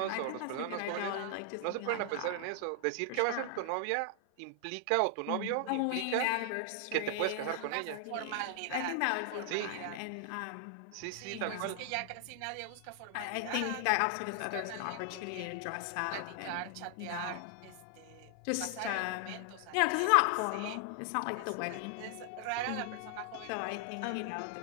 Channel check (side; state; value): both; different; correlation 0.00